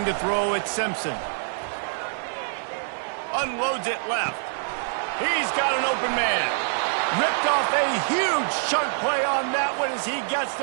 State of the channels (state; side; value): silent; left; digital silence